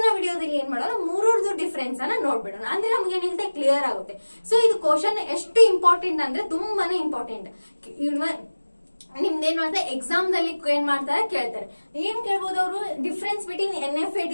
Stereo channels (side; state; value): both; inverted; correlation -1.00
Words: ವಿಡಿಯೋದಲ್ಲಿ ಏನ್ ಮಾಡೋಣ, ಮೂರರದು ಡಿಫರೆನ್ಸ್ ಅನ್ನ ನೋಡ್ಬಿಡೋಣ. ಅಂದ್ರೆ ನಮ್ಗೆ ಏನಿರುತ್ತೆ ಕ್ಲಿಯರ್ ಆಗುತ್ತೆ. ಸೊ ಇದು ಕ್ವಶನ್ ಎಷ್ಟು ಇಂಪಾರ್ಟೆಂಟ್ ಅಂದ್ರೆ ತುಂಬಾನೇ ಇಂಪಾರ್ಟೆಂಟ್. ನಿಮ್ದೇನು ಅಂದ್ರೆ ಎಕ್ಸಾಮ್ ದಲ್ಲಿ ಏನ್ ಮಾಡ್ತಾರೆ, ಕೇಳ್ತಾರೆ. ಏನ್ ಕೇಳ್ಬೋದು ಅವರು, ಡಿಫರೆನ್ಸ್ ಬಿಟ್ವೀನ್ NFA,